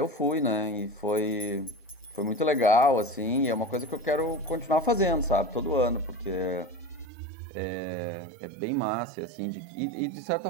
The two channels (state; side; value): drops out; left; at 7.1 s